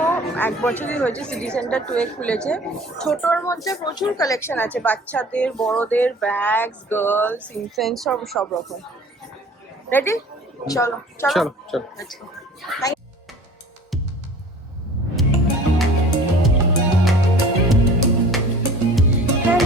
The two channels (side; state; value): both; normal; correlation 0.46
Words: 1 বছরই হয়েছে, সিটি সেন্টার 2 এ খুলেছে। ছোটর মধ্যে প্রচুর কালেকশন আছে, বাচ্চাদের, বড়দের, ব্যাগস, গার্লস, ইনফ্যান্ট, সব রকম। রেডি? চলো চলো চলো চলো।